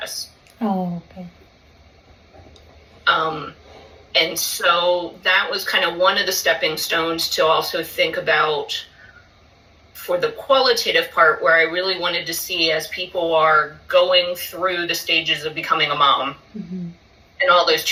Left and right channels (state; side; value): identical; both; correlation 1.00